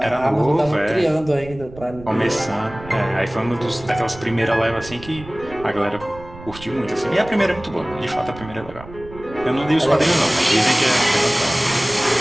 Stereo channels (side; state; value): right; noise; rumble, 17 dB below the sound